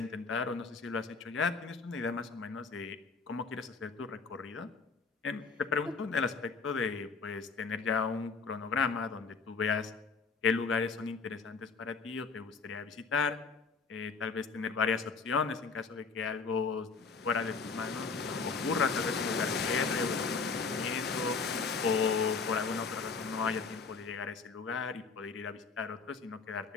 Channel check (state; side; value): quieter; right; 4.8 dB